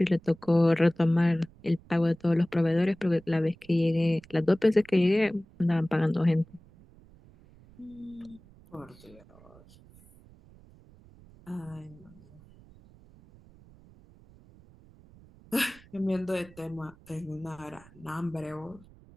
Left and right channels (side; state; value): right; noise; rumble, 25 dB below the sound